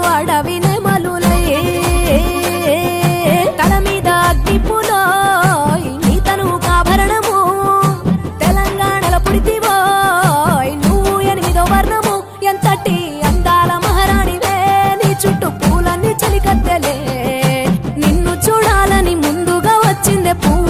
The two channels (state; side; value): identical; both; correlation 1.00